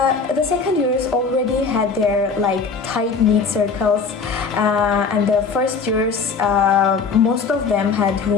The second years already had their tight-knit circles, and the first years most of them had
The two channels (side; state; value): right; quieter; 5.1 dB